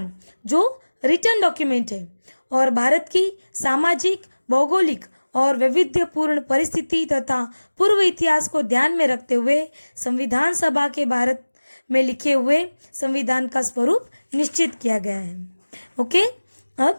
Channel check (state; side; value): inverted; both; correlation -1.00